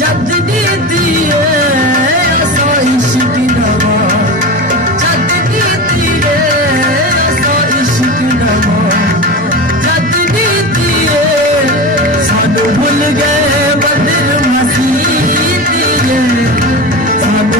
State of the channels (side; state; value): both; normal; correlation 0.26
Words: दी दिए, हसा इश्क नवा जद दी दिए, हसा इश्क नवा जद दी दिए, सानू भुल गए बदर मसीह दिए,